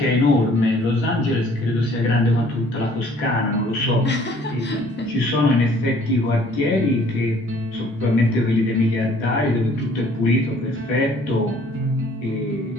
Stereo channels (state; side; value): normal; both; correlation 0.57